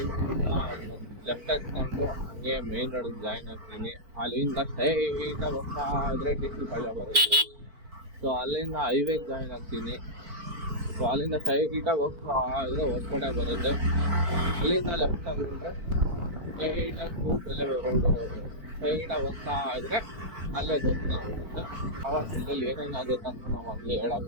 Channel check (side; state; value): left; late; 4.5 ms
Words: ಲೆಫ್ಟ್ ಹಾಕ್ಕೊಂಡು ಹಂಗೆ ಮೇನ್ ರೋಡಿಗೆ ಜಾಯಿನ್ ಆಗ್ತೀನಿ. ಅಲ್ಲಿಂದ ಸ್ಟ್ರೈಟಾಗಿ ಹೋಗ್ತಾ ಇದ್ರೆ DC ಪಾಳ್ಯ ಬರುತ್ತೆ. ಸೊ ಅಲ್ಲಿಂದ ಹೈವೇಗೆ ಜಾಯಿನ್ ಆಗ್ತೀನಿ. ಸೊ ಅಲ್ಲಿಂದ ಸ್ಟ್ರೈಟಾಗಿ ಹೋಗ್ತಾ ಇದ್ರೆ ಹೊಸಕೋಟೆ ಬರುತ್ತೆ. ಅಲ್ಲಿಂದ ಲೆಫ್ಟ್ ಆಗಿದ್ರೆ ಸ್ಟ್ರೈಟಾಗಿ ಸೂಲ್ಬೆಲೆ ರೋಡು ಸ್ಟ್ರೈಟಾಗಿ ಹೋಗ್ತಾ ಇದ್ರೆ ಅಲ್ಲೇ ದೇವಸ್ಥಾನ ಬರುತ್ತೆ. ಆವಾಗ ಇಲ್ಲಿ ಏನೇನಾಗುತ್ತೆ ಅಂತ ನಾವು ಅಲ್ಲಿ